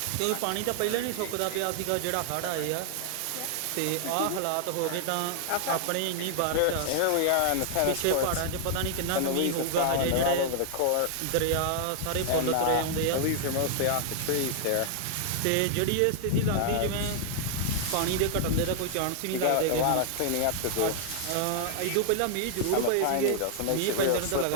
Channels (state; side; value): different; both; correlation -0.01